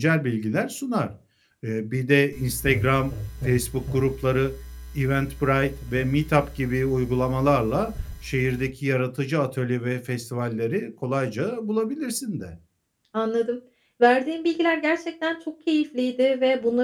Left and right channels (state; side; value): identical; both; correlation 1.00